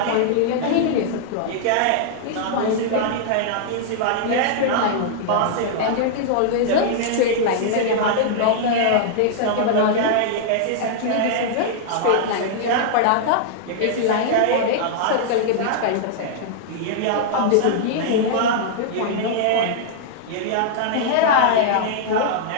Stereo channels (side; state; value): both; different; correlation -0.01